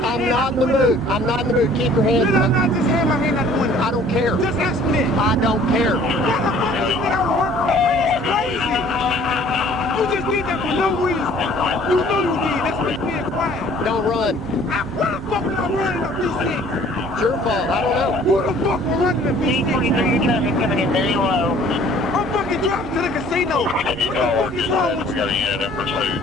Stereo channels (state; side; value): normal; both; correlation 0.53